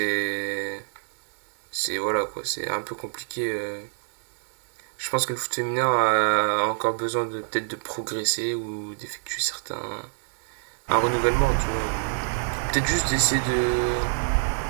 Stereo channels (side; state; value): left; silent; 60 dB below the other